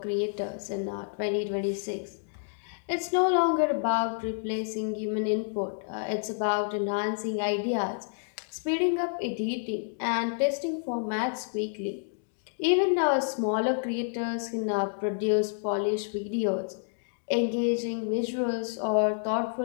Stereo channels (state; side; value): silent; right; digital silence